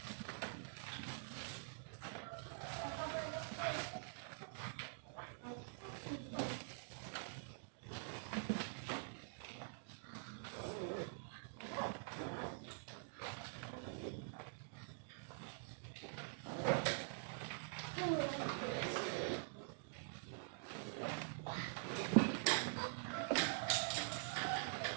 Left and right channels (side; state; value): left; silent; digital silence